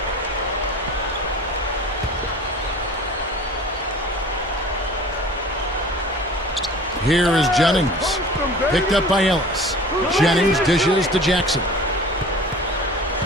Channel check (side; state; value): both; normal; correlation 0.42